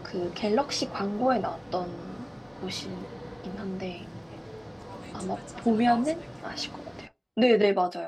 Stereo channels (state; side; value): identical; both; correlation 1.00